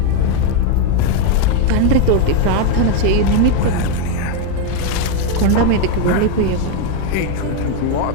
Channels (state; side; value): different; both; correlation 0.01